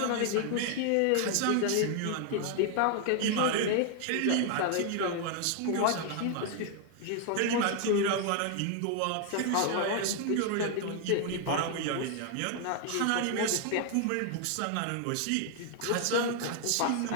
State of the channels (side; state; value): both; different; correlation 0.00